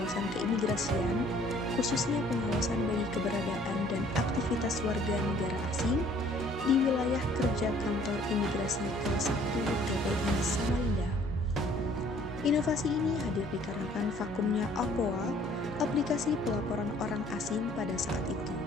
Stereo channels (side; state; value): left; noise; hum, 18 dB below the sound